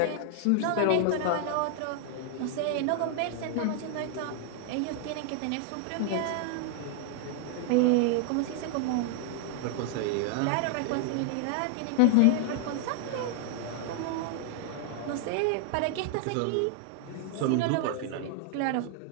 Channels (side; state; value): both; different; correlation 0.00